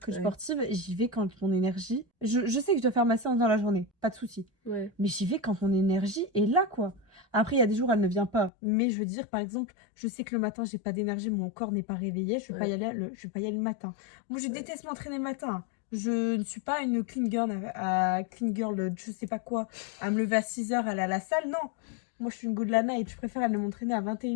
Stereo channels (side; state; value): right; drops out; at 8.5 s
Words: coach Ouais. sportive, j'y vais quand mon énergie... Je sais que je dois faire ma séance dans la journée, pas de souci. Ouais. Mais j'y vais quand mon énergie est là, quoi. Après, il y a des jours, elle ne vient pas. Mais je veux dire, par exemple, je sais que le matin, j'ai pas d'énergie, mon corps n'est pas réveillé, je vais pas y aller je vais pas y aller le matin. Moi, je déteste m'entraîner le matin. Je ne suis pas une clean girl, je sais pas quoi, à me lever à 6h, aller à la salle. Non. Moi, je suis une go de la night. Je préfère aller m'entraîner à